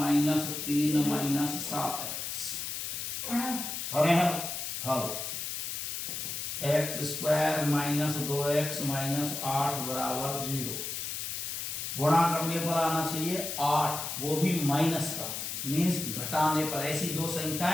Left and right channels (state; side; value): noise; left; hiss, 4 dB below the sound